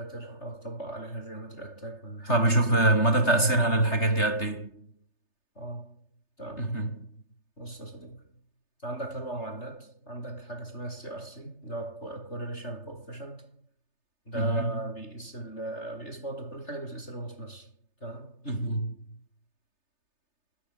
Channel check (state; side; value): late; right; 3.3 ms